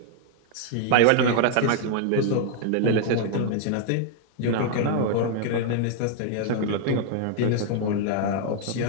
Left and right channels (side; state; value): both; different; correlation 0.00